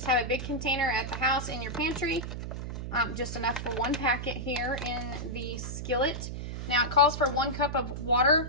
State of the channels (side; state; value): right; noise; hum, 6 dB below the sound